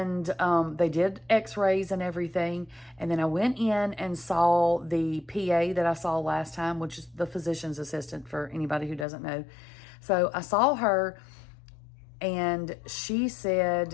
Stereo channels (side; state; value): right; drops out; at 9.1 s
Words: they did x-rays and everything. And then I went in and saw the PA that I saw last time, which is the physician's assistant for anybody who doesn't know. So I saw her, and she